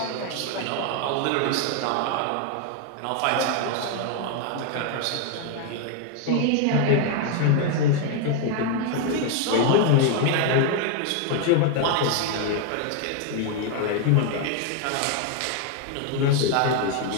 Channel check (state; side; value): different; both; correlation 0.00